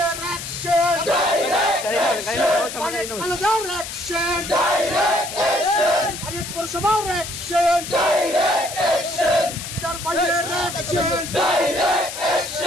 অ্যাকশন, কলেজের অ্যাকশন, ভারত পৌরসভার অ্যাকশন, পিতার ভাইয়ের অ্যাকশন,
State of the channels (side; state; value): left; noise; hiss, 8 dB below the sound